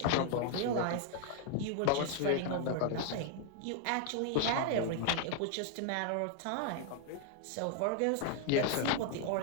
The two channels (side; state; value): both; different; correlation 0.00